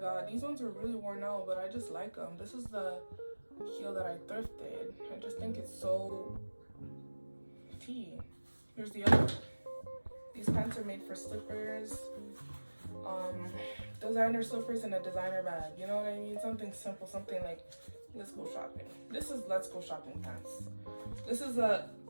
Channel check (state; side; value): inverted; both; correlation -1.00